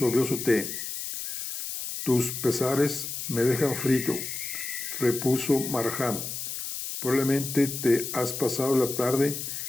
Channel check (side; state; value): left; noise; hiss, 6 dB below the sound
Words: su té. Tus pesares me dejan frito, repuso Markham. Probablemente te has pasado la tarde